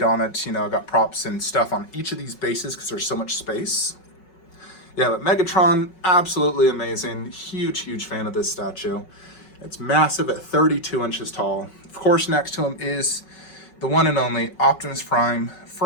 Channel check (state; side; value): late; right; 5.4 ms